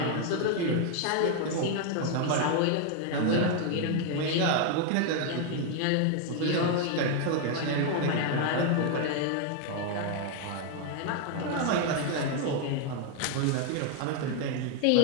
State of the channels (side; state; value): both; different; correlation 0.00